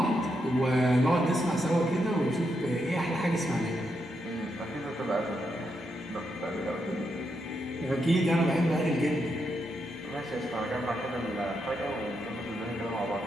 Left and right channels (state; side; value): normal; both; correlation 0.82